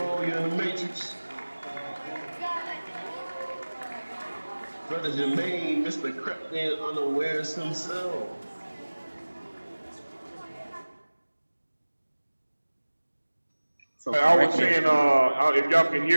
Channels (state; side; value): inverted; both; correlation -1.00